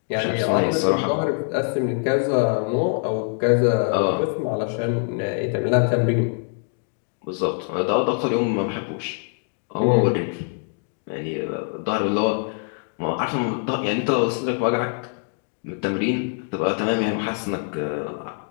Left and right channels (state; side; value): silent; right; 58 dB below the other